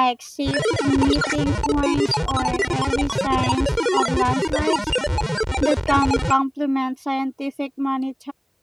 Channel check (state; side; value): identical; both; correlation 1.00